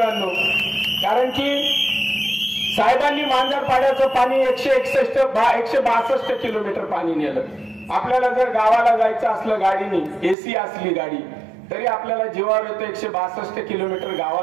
कारण की साहेबांनी मांजरपाड्याचं पाणी 162 किलोमीटर पाणी नेलं। आपल्याला जर गावाला जायचं असलं गाडीने, एसी असली गाडी, तरी आपल्याला जीवावर येतं 162 किलोमीटर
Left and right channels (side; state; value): left; drops out; at 10.4 s